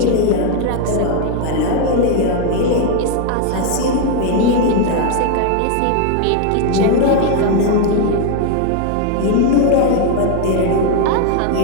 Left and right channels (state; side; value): different; both; correlation 0.01